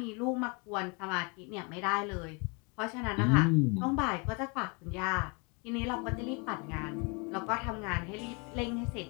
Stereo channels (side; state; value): right; quieter; 32.1 dB